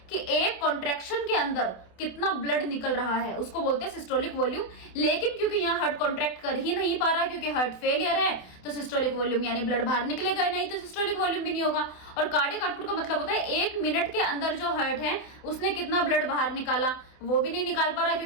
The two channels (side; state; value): right; late; 28 ms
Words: कि एक कॉन्ट्रैक्शन के अंदर कितना ब्लड निकल रहा है उसको बोलते हैं सिस्टोलिक वॉल्यूम। लेकिन क्योंकि यहाँ हार्ट कॉन्ट्रैक्ट कर ही नहीं पा रहा क्योंकि हार्ट फेलियर है, तो सिस्टोलिक वॉल्यूम यानी ब्लड बाहर निकलेगा नहीं, तो सिस्टोलिक वॉल्यूम भी नहीं होगा। और कार्डियक आउटपुट का मतलब होता है 1 मिनट के अंदर जो हार्ट है उसने कितना ब्लड बाहर निकाला, वो भी नहीं निकाल पा रहा